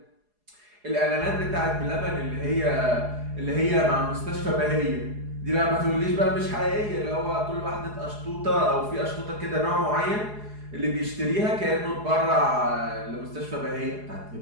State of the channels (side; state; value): left; late; 4.8 ms